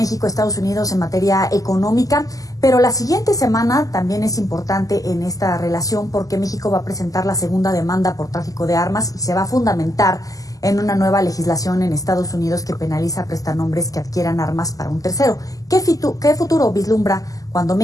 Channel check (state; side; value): late; right; 0.17 ms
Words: Unidos en materia económica, pero la siguiente semana también es importante en esta relación porque México va a presentar la segunda demanda por tráfico de armas y se va a fundamentar en una nueva legislación en Estados Unidos que penaliza prestanombres que adquieran armas para un tercero. ¿Qué futuro vislumbra cuando